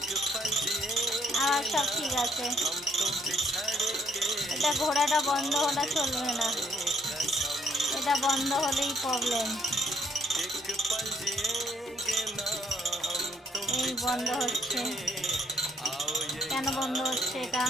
আবার সব ঠিক আছে। এটা ঘোড়াটা বন্ধ হলে চলবে না, এটা বন্ধ হলেই প্রবলেম। এই বন্ধ হচ্ছে, কেন বন্ধ হচ্ছে এটা?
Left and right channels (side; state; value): both; normal; correlation 0.65